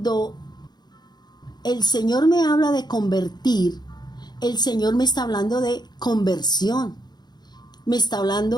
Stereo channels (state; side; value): late; right; 0.20 ms